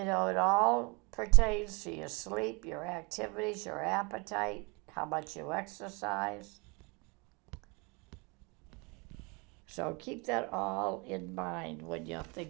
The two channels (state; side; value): quieter; left; 30.0 dB